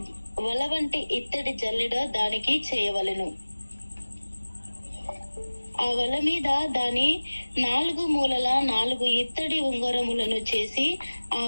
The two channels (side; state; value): both; inverted; correlation -1.00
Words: వల వంటి ఇత్తడి జల్లెడ దానికి చేయవలెను. ఆ వల మీద దాని 4 మూలల 4 ఇత్తడి ఉంగరములను చేసి ఆ